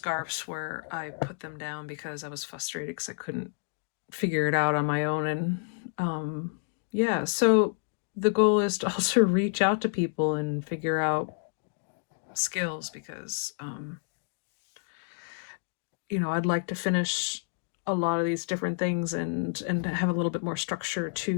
where I put them down because I was frustrated because I couldn't figure it out on my own. And yeah, so the goal is to also reach out to people and figure out skills, because you know, I'd like to finish a lot of these different things and have a little bit more structure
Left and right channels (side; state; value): right; silent; digital silence